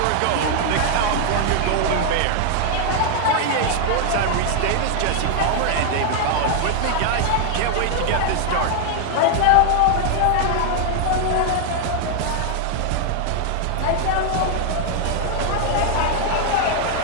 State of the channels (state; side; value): different; both; correlation 0.00